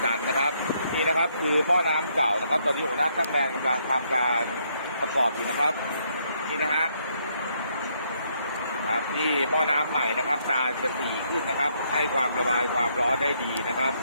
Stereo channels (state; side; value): inverted; both; correlation -0.73